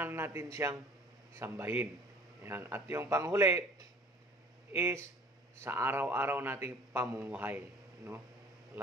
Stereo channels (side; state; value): both; normal; correlation 0.49